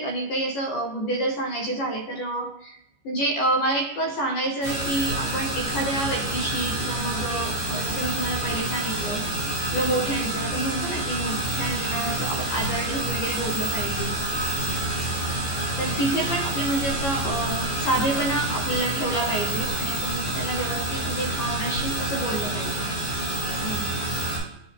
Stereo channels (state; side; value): late; right; 14 ms